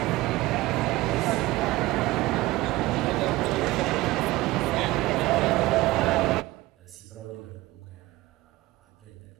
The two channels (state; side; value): quieter; left; 19.0 dB